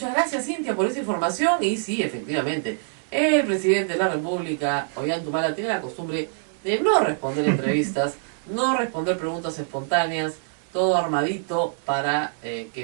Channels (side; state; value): left; silent; digital silence